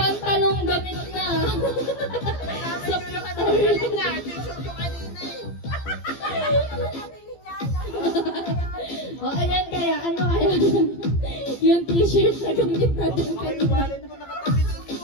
gamit na. Sa O, ayan kaya, ano kaya? Yung t-shirt na gamit natin Baka yung kanina. wallet mo nakatabi doon mo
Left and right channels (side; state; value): right; late; 15 ms